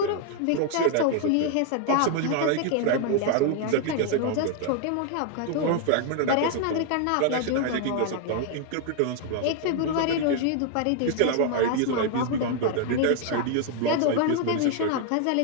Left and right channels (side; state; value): both; different; correlation 0.00